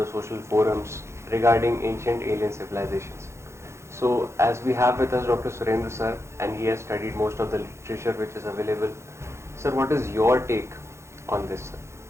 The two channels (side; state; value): left; late; 0.13 ms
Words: social forums regarding ancient alien civilizations. So, as we have with us Dr. Surendra sir, and he has studied most of the literature which is available. Sir, what is your take on this,